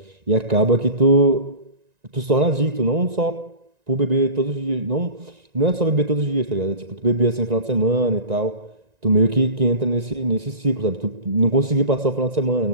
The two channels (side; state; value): left; late; 1.9 ms